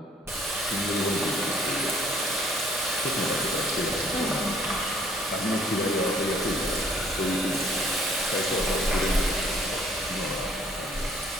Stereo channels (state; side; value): normal; both; correlation 0.61